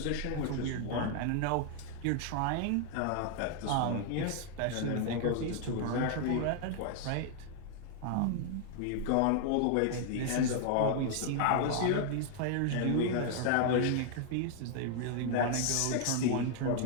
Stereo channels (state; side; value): different; both; correlation 0.00